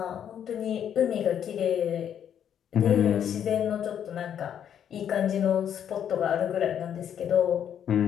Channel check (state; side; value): quieter; right; 9.2 dB